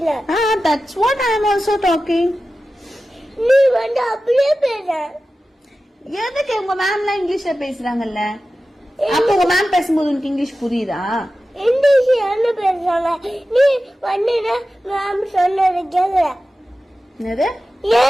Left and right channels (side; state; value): both; normal; correlation 0.94